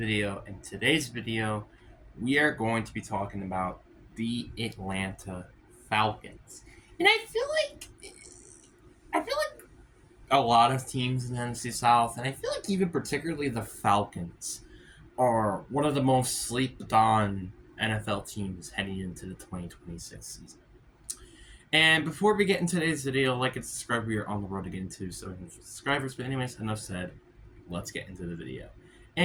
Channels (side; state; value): both; identical; correlation 1.00